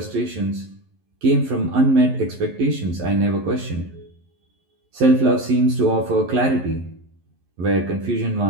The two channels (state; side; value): late; left; 11 ms